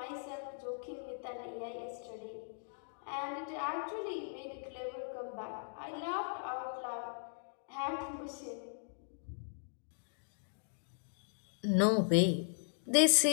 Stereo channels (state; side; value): silent; right; digital silence